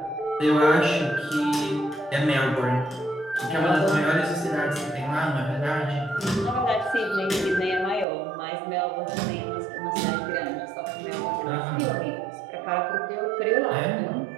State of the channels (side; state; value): left; drops out; at 8.1 s